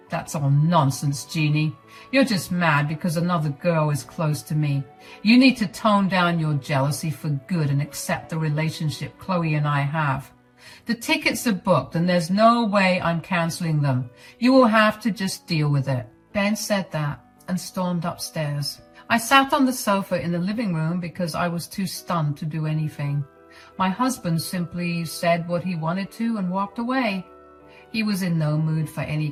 That's all nonsense, Jeannie. You're just mad because another girl is close to me. You need to tone down your jealousy for good and accept the relationship Chloe and I have. The tickets are booked and there's no way I'm canceling them. You will have to just deal with it. Ben said that and stormed upstairs. I sat on the sofa in the living room because I was too stunned to do anything. My husband simply said what he wanted to and walked away. He was in no mood for any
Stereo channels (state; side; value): identical; both; correlation 1.00